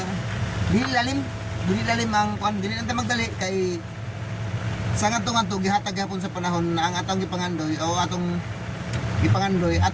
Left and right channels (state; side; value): identical; both; correlation 1.00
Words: dili lalim ang kuan, dili lang ta magdali kay sa ngadto gihatag gapon sa panahon na ang atong gipangandoy o atong gipangandoy